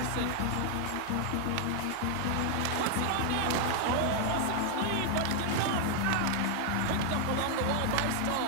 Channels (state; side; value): different; both; correlation 0.00